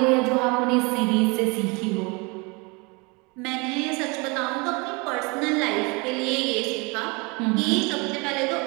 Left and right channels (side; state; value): left; quieter; 28.8 dB